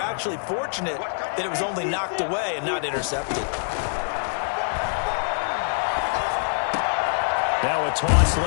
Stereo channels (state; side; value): silent; right; digital silence